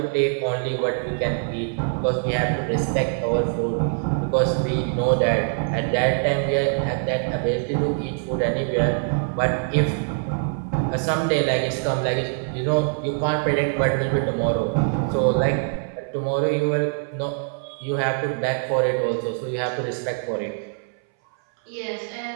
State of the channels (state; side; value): silent; left; 61 dB below the other